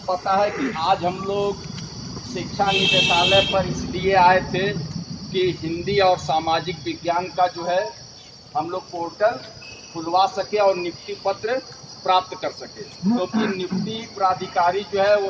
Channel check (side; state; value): both; identical; correlation 1.00